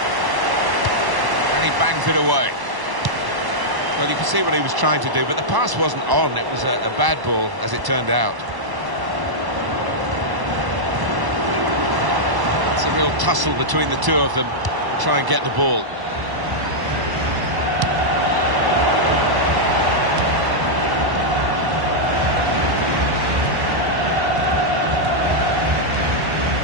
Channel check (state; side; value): late; left; 1.0 ms